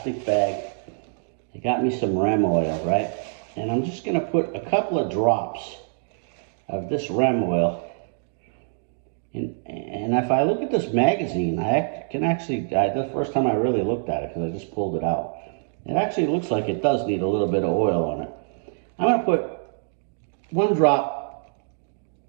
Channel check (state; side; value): silent; left; digital silence